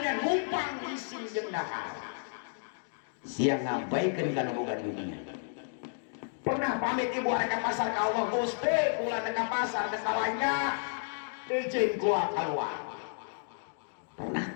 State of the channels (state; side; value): silent; right; digital silence